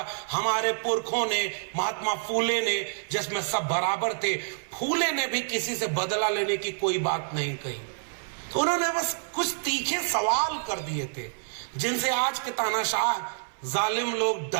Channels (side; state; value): left; silent; 60 dB below the other